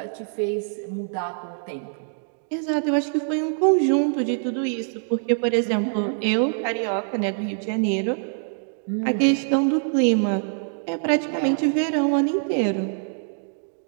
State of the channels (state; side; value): silent; left; digital silence